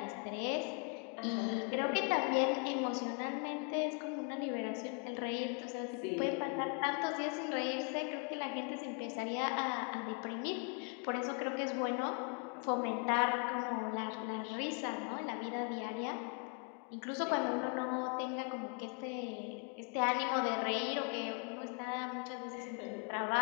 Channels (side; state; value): right; quieter; 35.3 dB